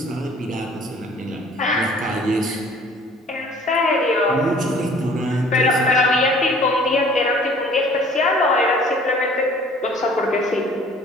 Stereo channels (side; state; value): both; normal; correlation 0.52